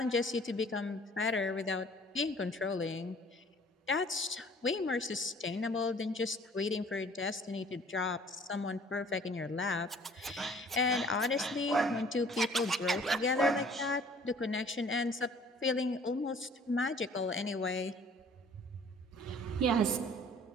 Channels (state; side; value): normal; both; correlation 0.53